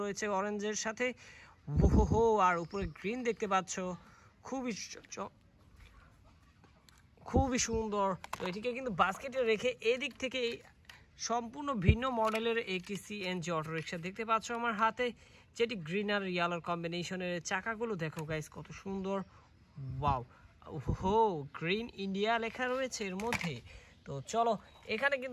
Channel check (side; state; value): both; identical; correlation 1.00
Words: রয়েছে অরেঞ্জের সাথে। ওহো, আর উপরে গ্রিন দেখতে পাচ্ছ, খুবই সুন্দর। তো এটিকে কিন্তু বাস্কেটে রেখে এদিক থেকে সম্পূর্ণ ভিন্ন মডেলের একটি সিএনজি অটো রিক্সা দেখতে পাচ্ছ আমার হাতে, যেটি গ্রিন আর ইয়েলোর কম্বিনেশনের। চাকাগুলো দেখো গাইস, কত সুন্দর। ওয়াও, ওহো, গ্রিন ইন্ডিয়া লেখা রয়েছে এর মধ্যে। তো চলো, এখানে